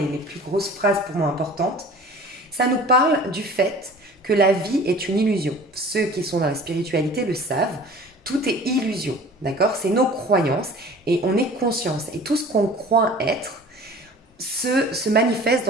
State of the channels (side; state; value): both; normal; correlation 0.44